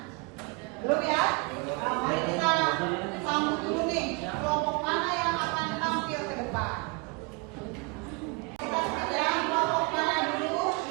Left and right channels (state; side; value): quieter; left; 29.7 dB